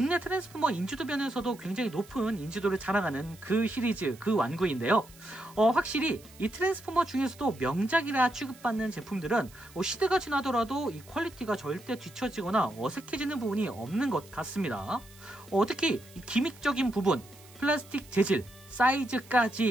트랜스포머 인지도면에서도 굉장히 높은 인지도를 자랑하는 그 시리즈, 그 완구인데요. 확실히 이 트랜스포머 중에서도 명작이라 취급받는 제품들은 시대가 지나더라도 이 퀄리티가 절대 뒤처지거나 어색해지는 부분이 없는 것 같습니다. 특히 이 기믹적인 부분, 플라스틱 재질,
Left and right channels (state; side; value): noise; right; hiss, 23 dB below the sound